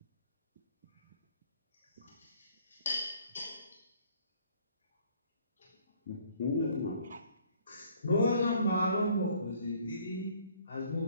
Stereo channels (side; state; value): both; inverted; correlation -0.60